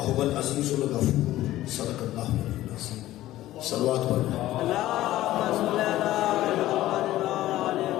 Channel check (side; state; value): right; quieter; 15.1 dB